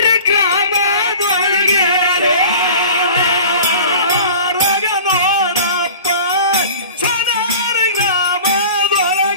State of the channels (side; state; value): both; inverted; correlation -0.40